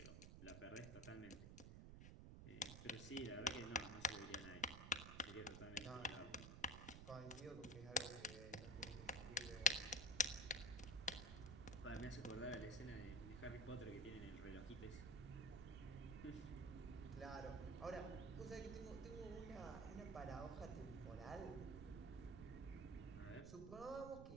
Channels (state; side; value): noise; right; rumble, 9 dB below the sound